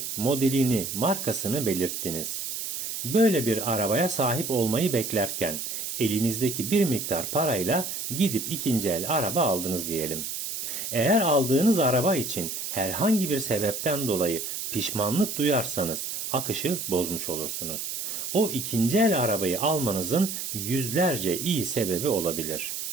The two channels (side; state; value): right; noise; hiss, 5 dB below the sound